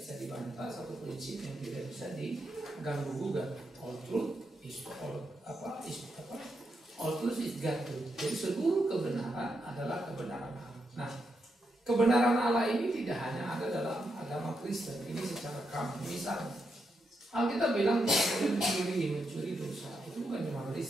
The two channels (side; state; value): both; normal; correlation 0.83